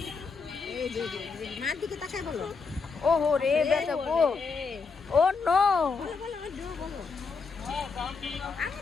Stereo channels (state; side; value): quieter; right; 4.8 dB